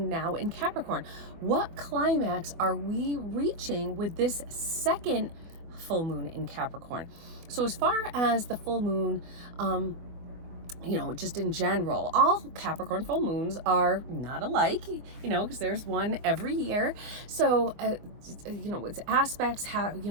now in Capricorn. What climax are we reaching with this second full moon in Capricorn? So as far as the full moon, just in general, all Capricorn full moons are not alike, because there's one every year. So, its aspects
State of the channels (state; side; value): late; left; 24 ms